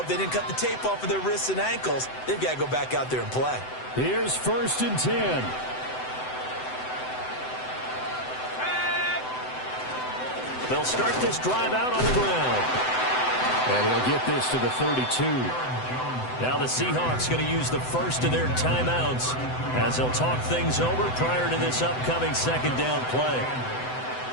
they didn't cut the tape off of their wrists and ankles. They've got to go back out there and play. Here's 1st and 10. They'll start this drive out on the ground. And he'll get this to the 32. Now the Seahawks going to use the first of their timeouts as they'll talk things over prior to this upcoming 2nd down play.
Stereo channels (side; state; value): right; late; 7.9 ms